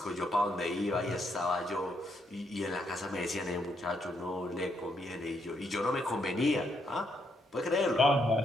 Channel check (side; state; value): both; normal; correlation 0.76